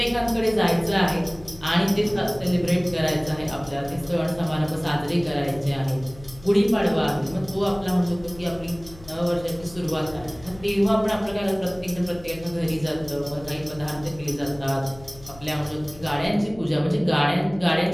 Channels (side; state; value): left; noise; hum, 20 dB below the sound